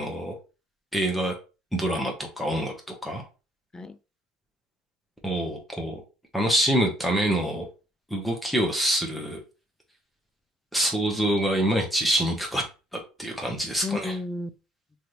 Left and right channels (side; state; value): both; normal; correlation 0.68